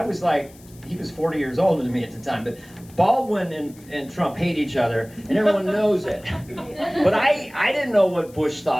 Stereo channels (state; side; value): noise; left; hiss, 25 dB below the sound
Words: was like, he was 40 years older than me at the time, but Baldwin and Trump hate each other, and everyone knows it. But I didn't know what Bush